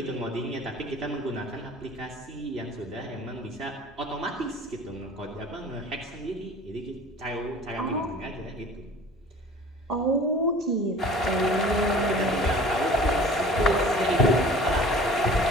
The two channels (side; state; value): both; normal; correlation 0.45